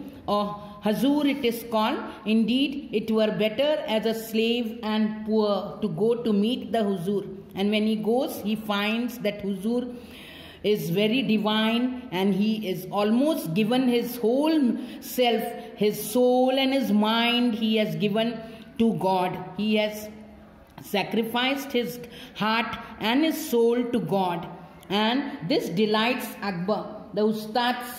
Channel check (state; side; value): identical; both; correlation 1.00